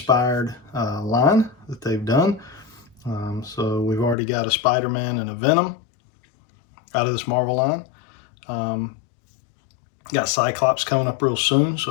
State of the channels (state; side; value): drops out; right; at 4.2 s